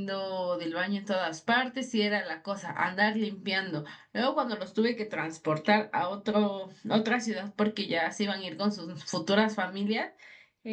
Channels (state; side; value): identical; both; correlation 1.00